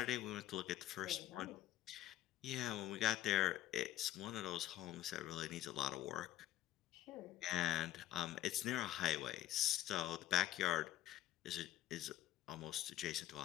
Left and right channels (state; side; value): quieter; right; 13.8 dB